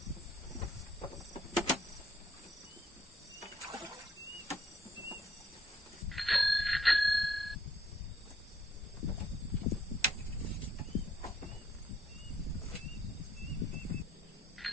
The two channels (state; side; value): normal; both; correlation 0.69